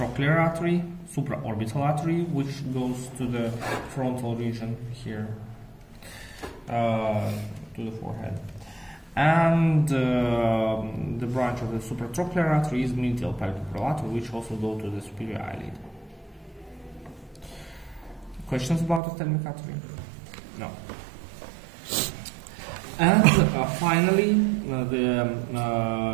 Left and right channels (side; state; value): left; drops out; at 19.0 s